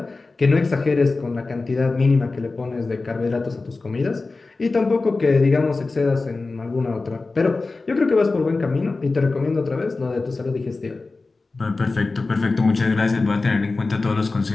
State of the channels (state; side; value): quieter; right; 3.6 dB